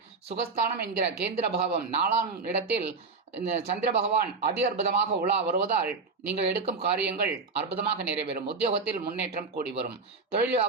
சுகஸ்தானம் என்கிற கேந்திர பாவம் 4ஆம் இடத்தில் சந்திர பகவான் அதி அற்புதமாக உலா வருவதால் நீங்கள் எடுக்கும் காரியங்கள் அற்புதமாக நிறைவேறும். உத்தியோகத்தில் முன்னேற்றம் கூடி வரும். தொழில்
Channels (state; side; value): quieter; left; 4.3 dB